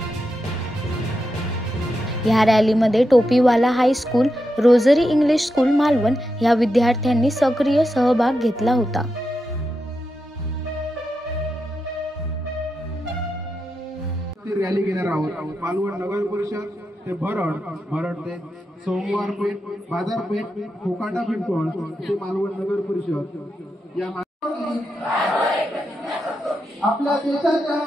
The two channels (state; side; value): normal; both; correlation 0.87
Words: या रॅलीमध्ये Topiwala high school, Rosary English school Malvan या विद्यार्थ्यांनी सक्रिय सहभाग घेतला होता। रॅली घेणार आहोत। मालवण नगर परिषद ते भरड ते सोमवारपेठ बाजारपेठ कोकाटा पिंपळ ते मालवण नगर परिषद या आपल्या देशाच्या